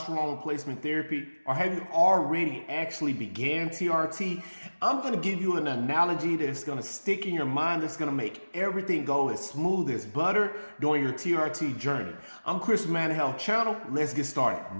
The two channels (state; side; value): inverted; both; correlation -1.00